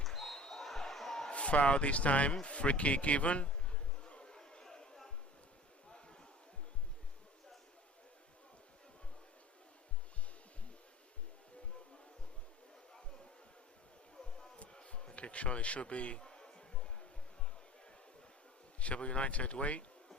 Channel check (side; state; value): both; normal; correlation 0.41